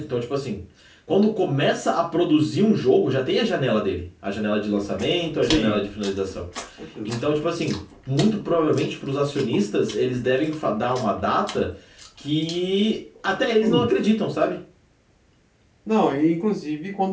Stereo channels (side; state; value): both; identical; correlation 1.00